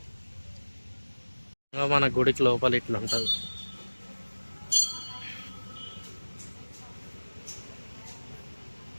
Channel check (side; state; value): both; inverted; correlation -1.00